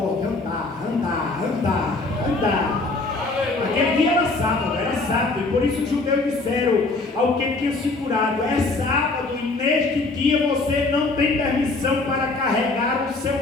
andar, andar, andar, andar. Aquele dia era sábado, e por isso os judeus disseram ao que tinha se curado: é sábado, e neste dia você não tem permissão para carregar o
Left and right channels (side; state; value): right; quieter; 3.4 dB